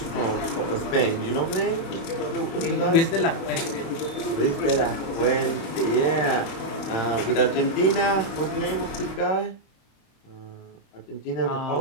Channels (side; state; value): right; late; 28 ms